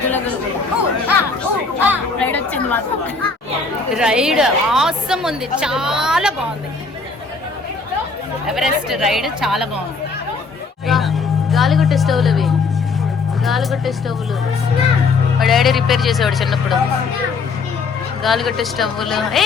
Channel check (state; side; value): quieter; right; 4.2 dB